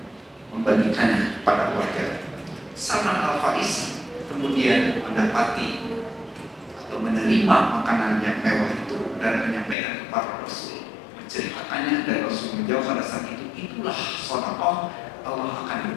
membagikannya kepada warga. Salman Al-Farisi kemudian mendapati atau menerima makanan yang mewah itu dan menyampaikan kepada Rasul, menceritakannya, dan Rasul menjawab pada saat itu, itulah sedekah, Allah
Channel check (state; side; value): drops out; right; at 9.8 s